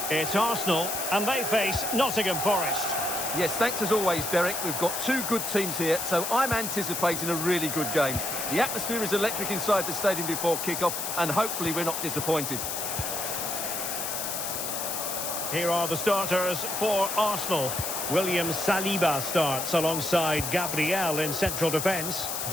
It's Arsenal, and they face Nottingham Forest. Yes, thanks as always, Derek. We've got two good teams here, so I'm anticipating a really good game. The atmosphere is electric inside the stadium before kick-off, and hopefully we're not disappointed. Here are the starters for Arsenal. William Saliba starts alongside Gabriel in central defence.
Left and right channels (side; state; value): left; noise; hiss, 3 dB below the sound